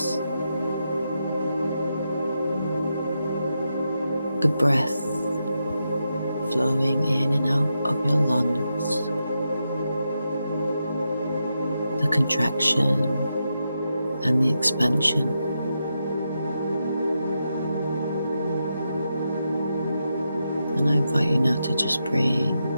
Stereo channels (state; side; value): inverted; both; correlation -0.86